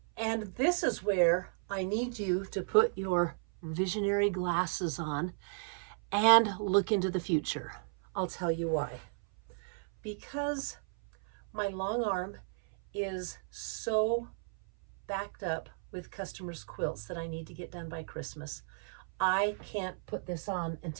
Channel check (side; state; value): left; silent; 55 dB below the other